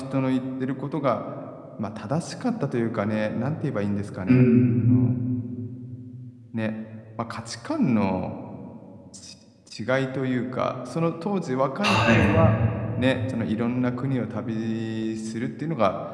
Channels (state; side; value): identical; both; correlation 1.00